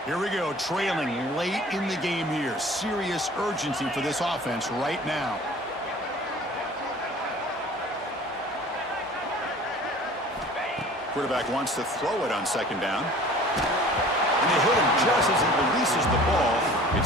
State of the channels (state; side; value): normal; both; correlation 0.46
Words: Here we go, trailing late in the game here. Serious urgency for this offense right now. Quarterback wants to throw it on second down. And they hit him just as he releases the ball.